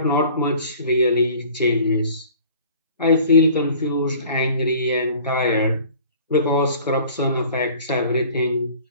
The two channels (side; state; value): both; inverted; correlation -0.48